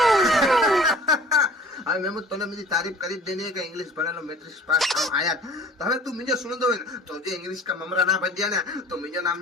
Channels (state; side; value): normal; both; correlation 0.47